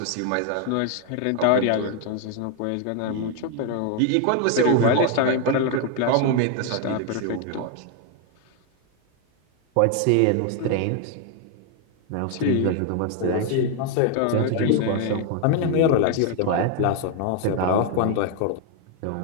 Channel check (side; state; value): both; different; correlation 0.01